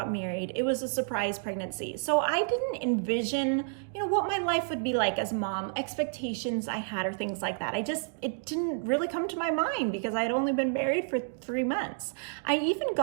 married. It was a surprise pregnancy. So I didn't envision, what my life would be like as a mom, expectations I had or things like that. It didn't really come to my mind because I had only been married for 3 months. I even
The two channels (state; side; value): silent; left; digital silence